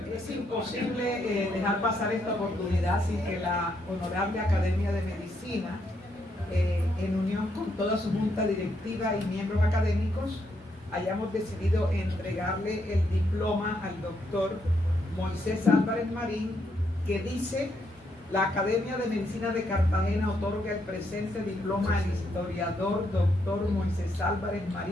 Es imposible dejar pasar esta oportunidad sin que la Honorable Academia de Medicina, en unión con toda su junta directiva y miembros académicos, hayamos decidido entregarle el diploma al doctor Moisés Álvarez Marín, que dice: la Academia de Medicina de Cartagena otorga el presente diploma al historiador doctor Moisés Álvarez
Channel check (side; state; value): both; normal; correlation 0.77